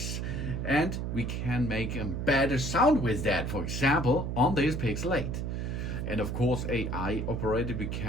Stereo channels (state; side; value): noise; right; hum, 3 dB below the sound